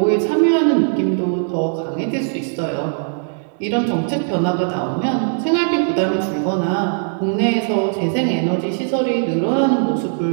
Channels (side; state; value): left; silent; digital silence